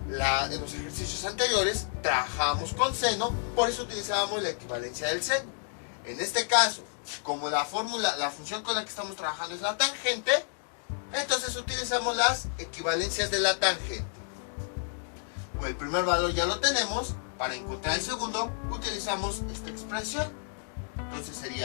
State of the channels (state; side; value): silent; right; 58 dB below the other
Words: En los ejercicios anteriores trabajamos con seno, por eso utilizábamos la equivalencia del seno. En este caso, como la función con la que estamos trabajando es la tangente, entonces utilizamos las equivalencias de la tangente. El primer valor ya lo tenemos. Para encontrar el segundo utilizamos esta expresión. Entonces